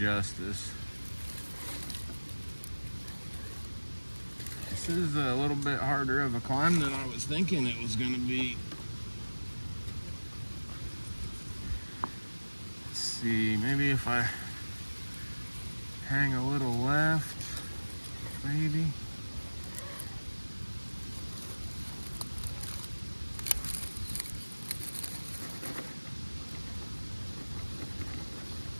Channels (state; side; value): inverted; both; correlation -1.00